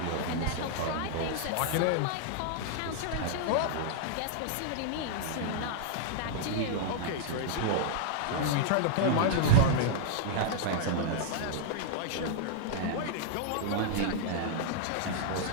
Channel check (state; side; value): different; both; correlation -0.01